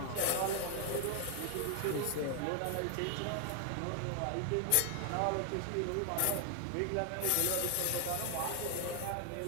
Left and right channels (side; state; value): both; different; correlation 0.00